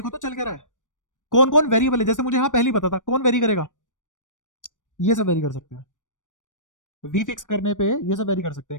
तो चल क्या रहा है, कौन कौन वेरिएबल है। जैसे मुझे यहाँ पहले ही पता था कौन वेरी करेगा, ये सब वेरी कर सकते हैं। वी फिक्स करने पे ये सब वेरी कर सकते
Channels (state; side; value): late; right; 0.87 ms